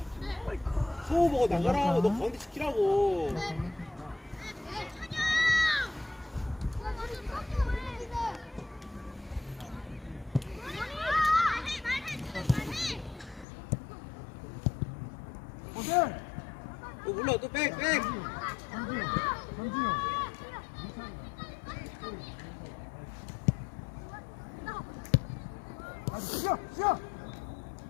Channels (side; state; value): right; drops out; at 13.5 s